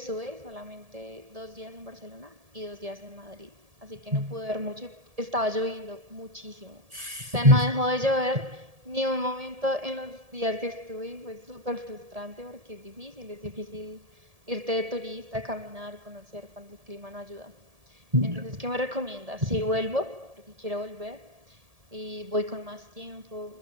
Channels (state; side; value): late; left; 1.7 ms